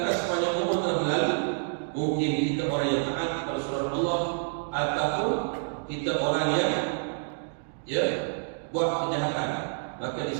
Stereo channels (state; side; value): silent; left; digital silence